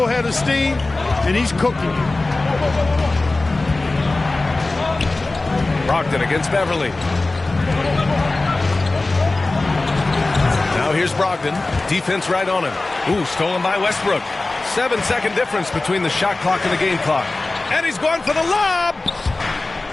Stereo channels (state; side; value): quieter; right; 3.2 dB